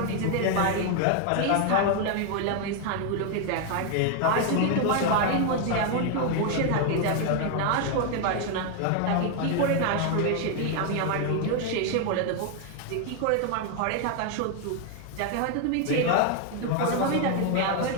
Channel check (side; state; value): both; different; correlation 0.01